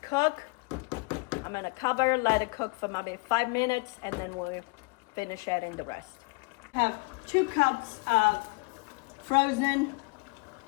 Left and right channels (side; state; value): right; quieter; 28.7 dB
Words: cook. I'm gonna cover, let it cook for maybe 5 minutes, and then we'll finish adding the rest. I have 2 cups of frozen